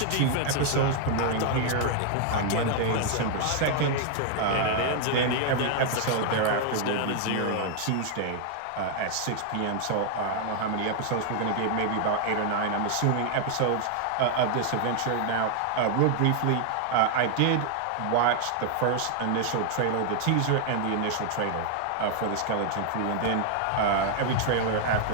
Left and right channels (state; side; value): different; both; correlation 0.00